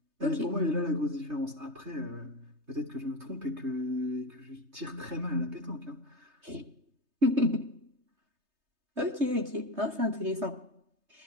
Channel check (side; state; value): left; late; 3.3 ms